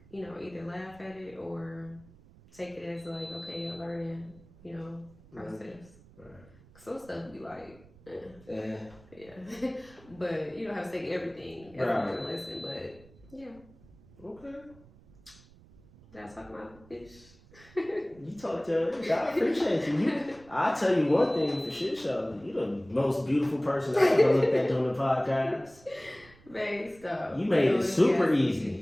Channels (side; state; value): right; noise; rumble, 24 dB below the sound